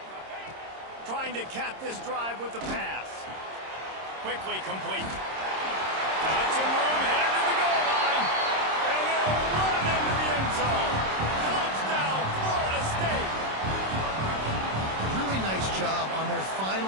Trying to cap this drive with the pass. Quickly complete. Got some room, headed to the goal line. And they'll run into the end zone. Touchdown, Florida State. Really nice job on their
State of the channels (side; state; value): left; late; 26 ms